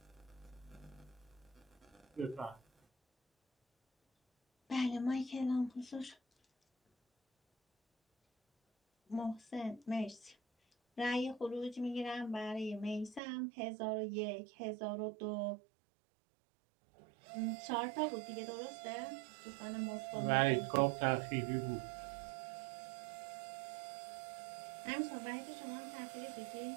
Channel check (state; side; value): drops out; left; at 13.2 s